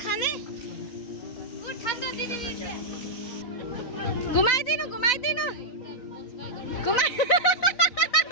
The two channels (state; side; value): late; right; 4.0 ms